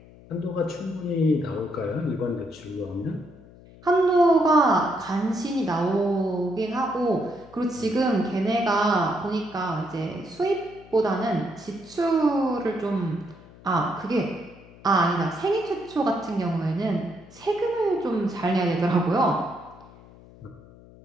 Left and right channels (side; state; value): left; noise; hum, 22 dB below the sound